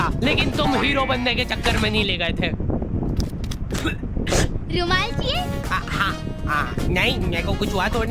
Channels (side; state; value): both; identical; correlation 1.00